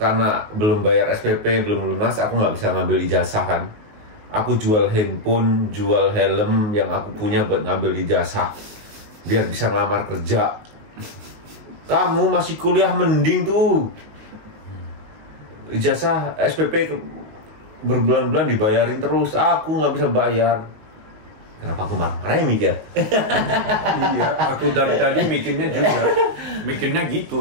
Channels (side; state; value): left; late; 19 ms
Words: karena belum bayar SPP, belum lunas, aku nggak bisa ngambil ijazah kan. Aku jual handphone, jual helm yang aku punya buat ngambil ijazah biar bisa ngelamar kerja. Kamu masih kuliah mending tuh. Ijazah SPP berbulan-bulan dibayarin terus, aku nggak bisa bayar. Kenapa aku marah ya mikir? Iya, aku dari tadi mikirnya gitu